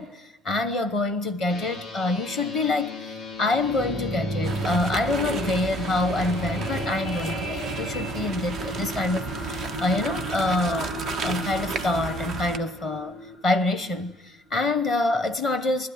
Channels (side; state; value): both; normal; correlation 0.59